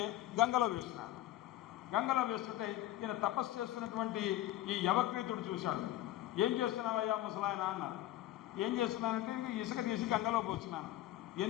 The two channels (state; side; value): quieter; right; 14.4 dB